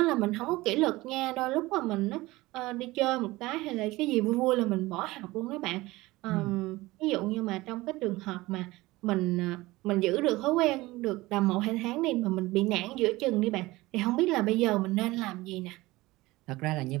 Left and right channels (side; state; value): left; quieter; 19.8 dB